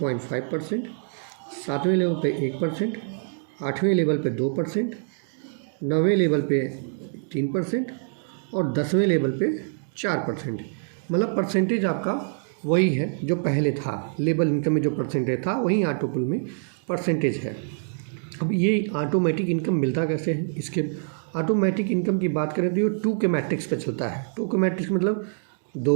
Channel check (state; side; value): silent; left; digital silence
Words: सातवें लेवल पे 1%, आठवें लेवल पे 2%, नौवें लेवल पे 3% और 10वें लेवल पे 4%। मतलब परसेंटेज आपका वही है जो पहले था। लेवल इनकम में जो परसेंटेज था वही ऑटोपुल में परसेंटेज है। अब ये ऑटोमेटिक इनकम मिलता कैसे है? इसके ऑटोमेटिक इनकम की बात करें तो ये 2 के मैट्रिक्स पे चलता है। 2 के मैट्रिक्स मतलब